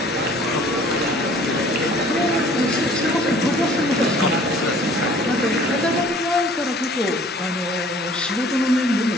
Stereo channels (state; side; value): normal; both; correlation 0.53